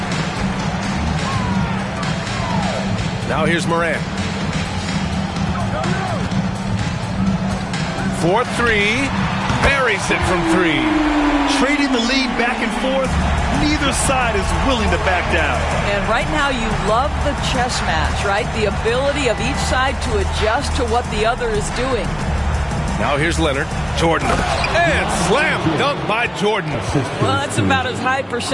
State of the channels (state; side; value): identical; both; correlation 1.00